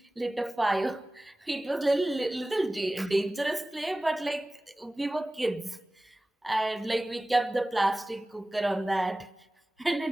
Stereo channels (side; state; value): both; normal; correlation 0.98